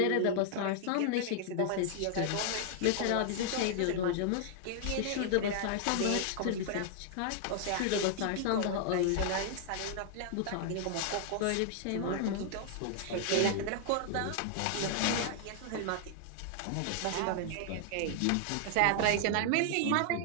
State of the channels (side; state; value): both; different; correlation 0.00